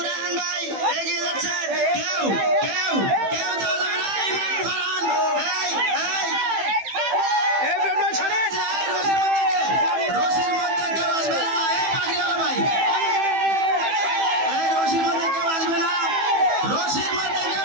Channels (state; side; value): late; left; 15 ms